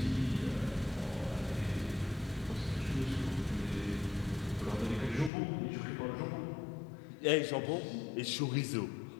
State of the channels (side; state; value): right; drops out; at 5.3 s